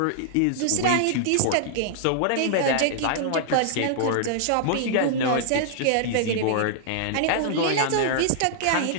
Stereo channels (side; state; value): both; different; correlation -0.01